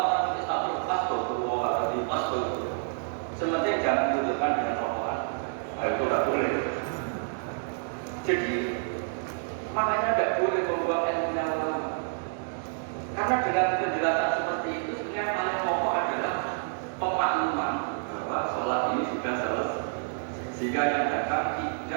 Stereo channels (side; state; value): left; silent; digital silence